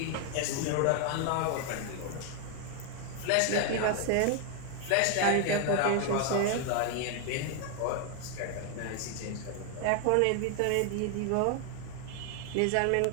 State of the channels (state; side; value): different; both; correlation 0.00